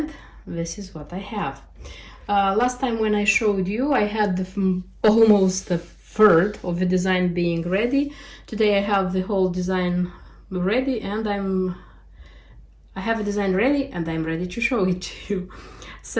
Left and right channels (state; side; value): identical; both; correlation 1.00